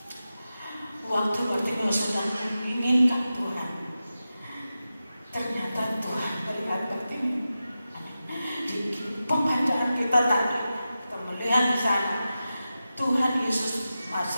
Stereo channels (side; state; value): both; inverted; correlation -0.92